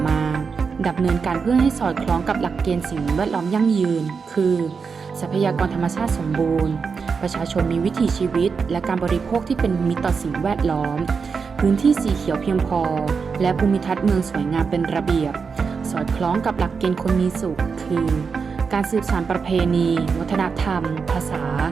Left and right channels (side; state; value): left; quieter; 5.5 dB